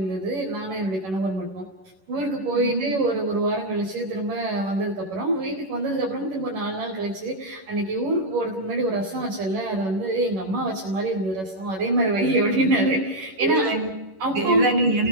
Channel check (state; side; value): late; left; 11 ms